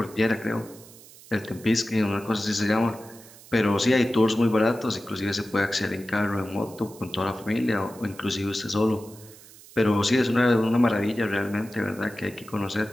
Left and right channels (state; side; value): noise; right; hiss, 21 dB below the sound